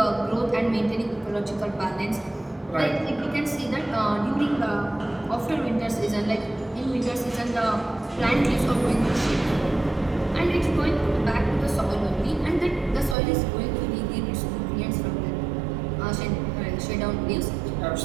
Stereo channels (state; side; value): drops out; left; at 13.2 s